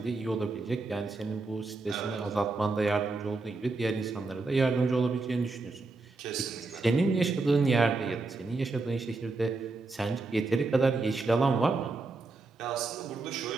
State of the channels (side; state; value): left; quieter; 3.6 dB